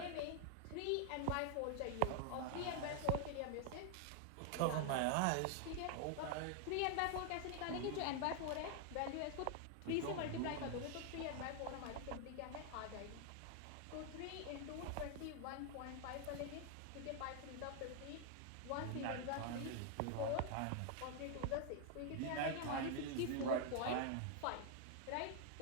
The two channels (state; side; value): different; both; correlation 0.00